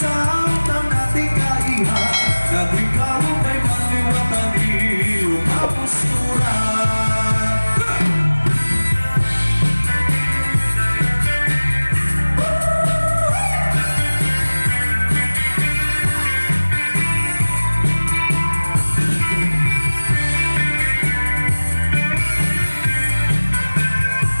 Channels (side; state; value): both; inverted; correlation -1.00